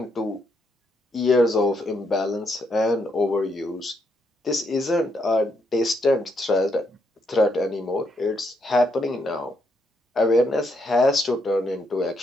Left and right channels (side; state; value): both; normal; correlation 0.77